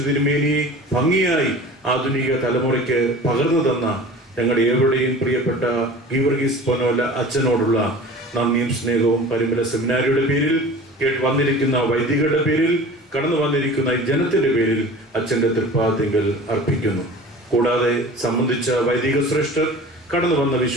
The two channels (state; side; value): normal; both; correlation 0.40